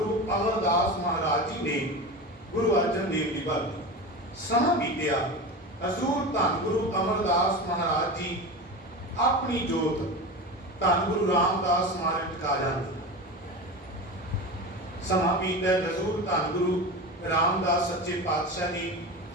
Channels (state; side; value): normal; both; correlation 0.26